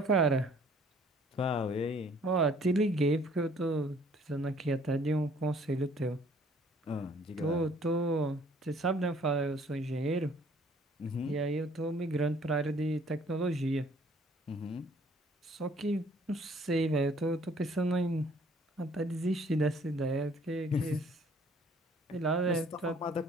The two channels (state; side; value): normal; both; correlation 0.58